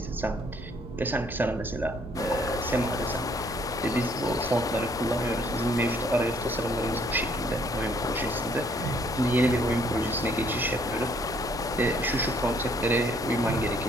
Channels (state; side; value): normal; both; correlation 0.64